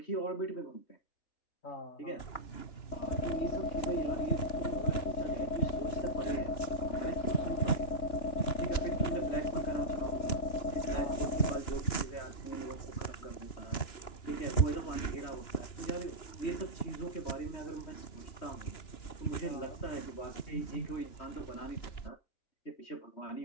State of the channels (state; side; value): late; right; 2.9 ms